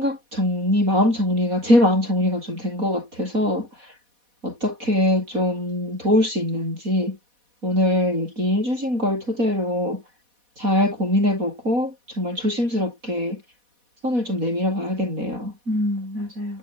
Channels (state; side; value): late; left; 4.1 ms